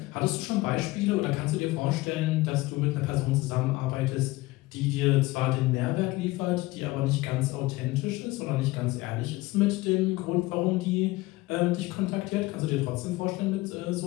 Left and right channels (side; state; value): right; quieter; 20.1 dB